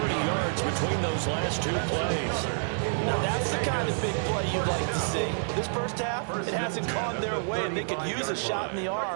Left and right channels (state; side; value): silent; left; digital silence